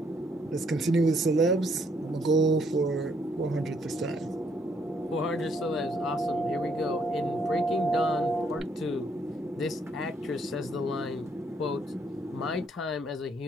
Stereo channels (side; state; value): both; normal; correlation 0.70